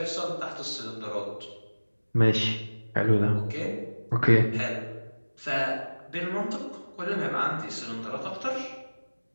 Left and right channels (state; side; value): inverted; both; correlation -1.00